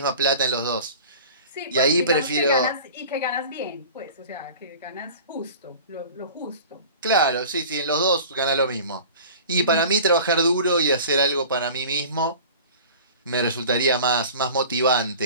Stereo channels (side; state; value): both; inverted; correlation -0.41